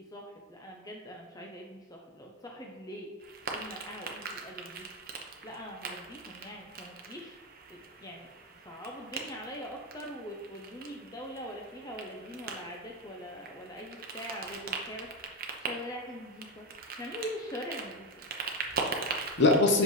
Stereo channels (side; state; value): both; normal; correlation 0.11